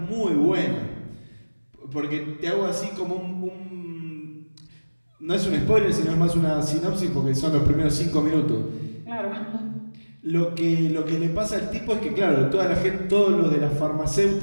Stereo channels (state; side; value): inverted; both; correlation -1.00